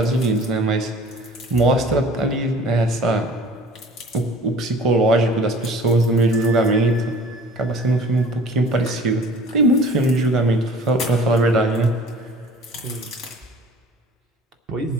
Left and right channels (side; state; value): both; normal; correlation 0.47